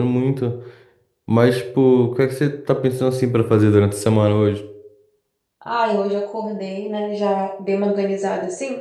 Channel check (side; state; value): both; identical; correlation 1.00